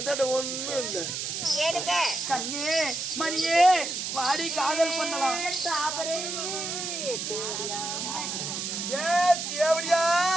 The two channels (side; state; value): right; noise; hiss, 3 dB below the sound